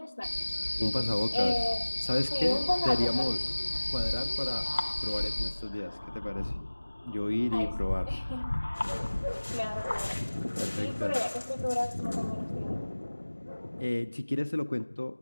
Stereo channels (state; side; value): inverted; both; correlation -1.00